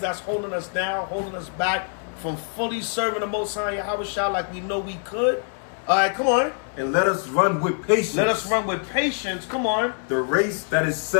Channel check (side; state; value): right; silent; 55 dB below the other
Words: holding us down, holding us back from fully serving the Most High Yahweh like we know we could. All right, come on. And let us run with patience. Let us run with patience. Come on. The race that is